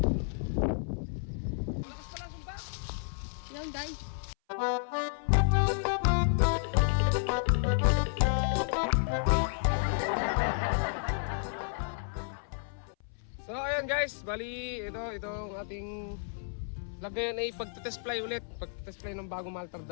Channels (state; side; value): silent; right; 57 dB below the other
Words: Lakas pala ang sumpa. Yan guys. So ayan guys, bali ito ang ating vlog ngayon ay pagtitest fly ulit. Pagtitest fly ng bagong Maltar 2.